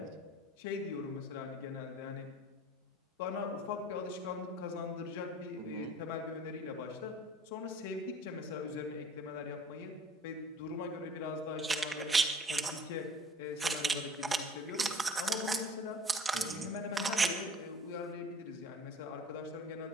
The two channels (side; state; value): both; normal; correlation 0.49